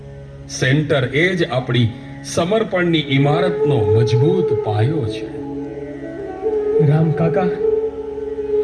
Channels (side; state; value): both; identical; correlation 1.00